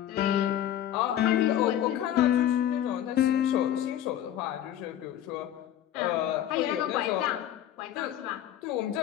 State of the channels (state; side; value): quieter; right; 11.3 dB